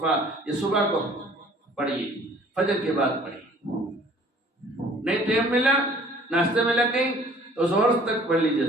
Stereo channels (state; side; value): normal; both; correlation 0.53